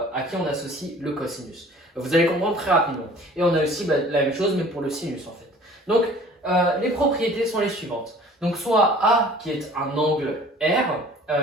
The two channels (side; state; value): both; normal; correlation 0.49